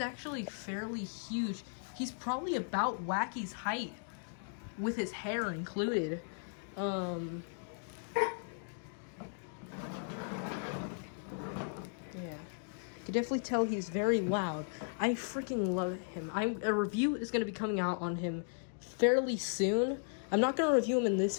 fairly huge. He's probably about Wacky's height, with his hair included. Yeah, you can definitely tell he's very loud. I freaking love him. A review is going to be coming out on him fairly soon. I'm not going to review him in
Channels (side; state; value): right; silent; digital silence